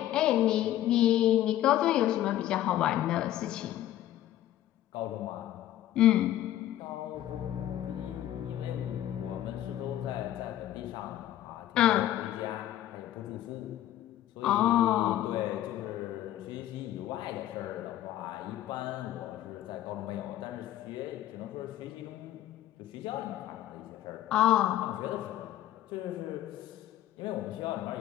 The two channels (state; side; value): quieter; right; 13.1 dB